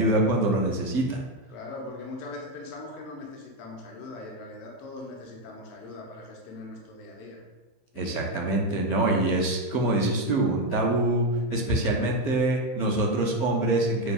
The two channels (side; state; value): right; late; 15 ms